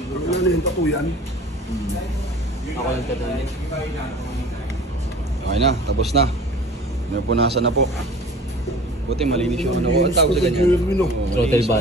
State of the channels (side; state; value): both; normal; correlation 0.43